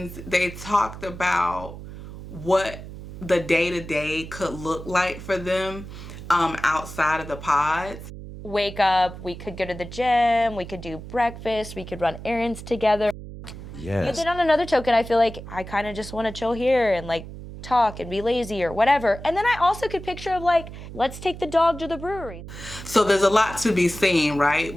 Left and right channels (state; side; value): noise; right; hum, 12 dB below the sound